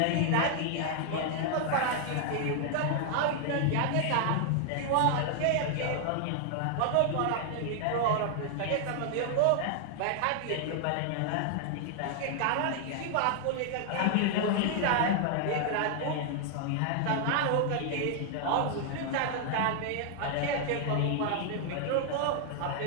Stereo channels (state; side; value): different; both; correlation 0.00